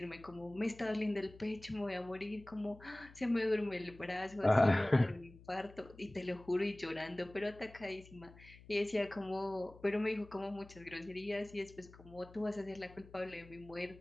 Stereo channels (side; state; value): left; noise; hum, 20 dB below the sound